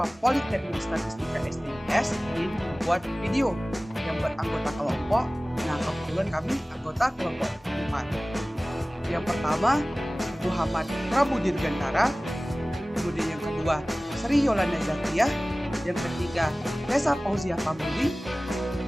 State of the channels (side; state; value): both; normal; correlation 0.98